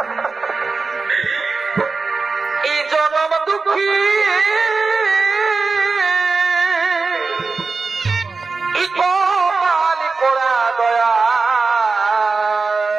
এই জনম দুঃখী কপাল পোড়া দয়া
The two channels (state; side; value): quieter; left; 4.2 dB